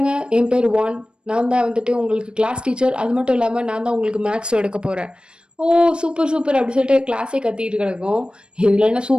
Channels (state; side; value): late; left; 0.054 ms